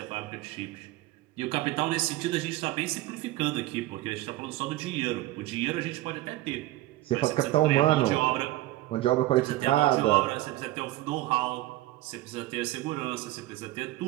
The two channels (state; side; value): quieter; left; 16.9 dB